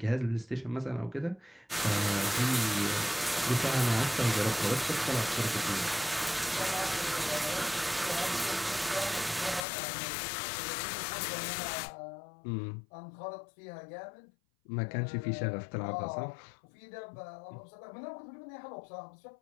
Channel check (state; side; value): drops out; right; at 9.7 s